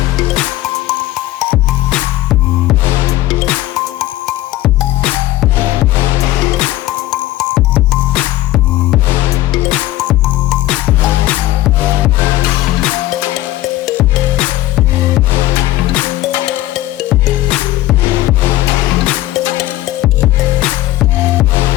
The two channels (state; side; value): quieter; right; 15.8 dB